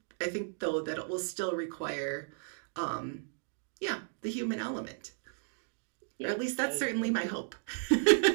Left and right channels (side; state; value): left; silent; digital silence